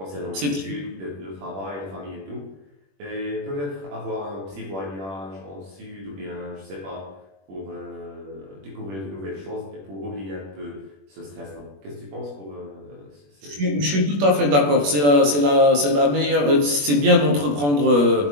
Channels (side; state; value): left; late; 21 ms